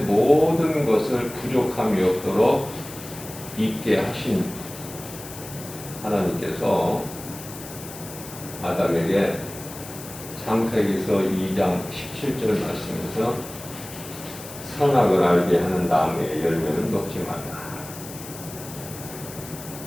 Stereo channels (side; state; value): left; noise; hiss, 14 dB below the sound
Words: 것을 부족함이 없도록 있게 하신 하나님께서 아담에게 창세기서 2장 17절 말씀에서 선악을 알게 하는 나무의 열매는 먹지 말라.